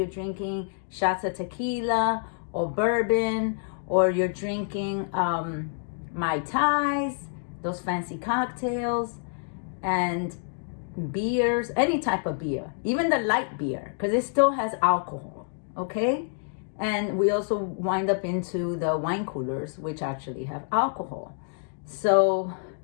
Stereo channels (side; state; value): right; silent; digital silence